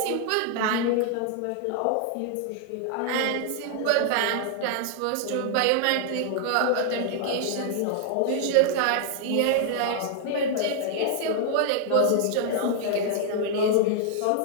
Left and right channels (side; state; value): both; different; correlation 0.00